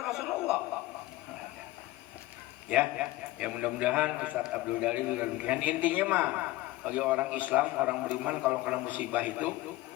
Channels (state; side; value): quieter; right; 17.9 dB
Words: Rasulullah? Ya mudah-mudahan Ustadz Abdul Dalil dan intinya mah bagi orang Islam, orang beriman kalau kena musibah itu